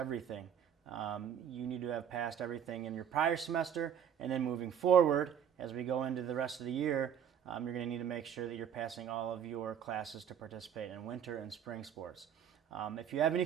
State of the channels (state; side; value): quieter; left; 8.7 dB